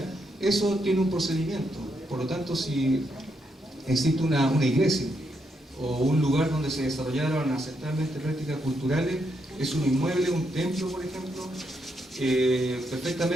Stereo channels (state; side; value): normal; both; correlation 0.79